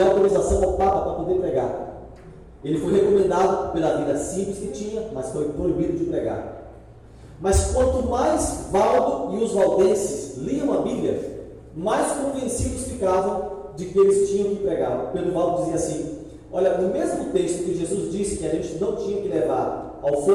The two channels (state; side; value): identical; both; correlation 1.00